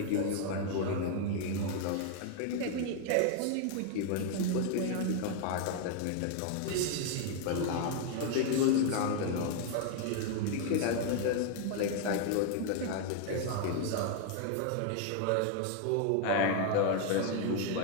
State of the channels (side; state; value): both; different; correlation 0.00